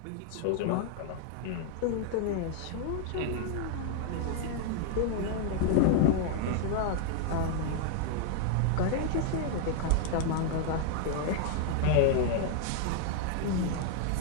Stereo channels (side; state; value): both; different; correlation 0.00